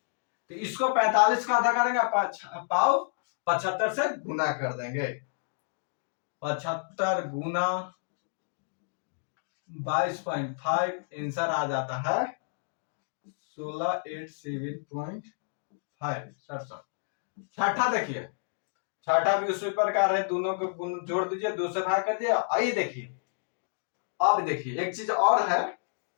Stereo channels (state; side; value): silent; right; digital silence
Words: तो इसको 45 का आधा करेंगे, पाव 75 से गुना कर देंगे। 75 गुना 22.5, आंसर आ जाता है 16,807.5। छठा देखिए, छठा भी उसी प्रकार है, दोनों को जोड़ दीजिए, 2 से भाग कर दिया। आइए देखिए, अब देखिए एक चीज और है,